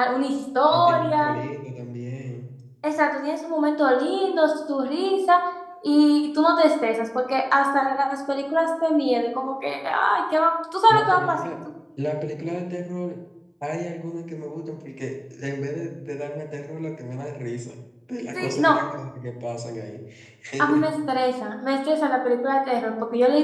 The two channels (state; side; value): identical; both; correlation 1.00